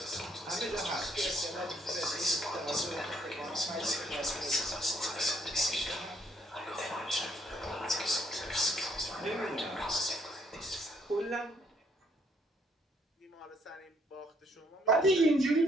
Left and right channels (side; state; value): both; normal; correlation 0.67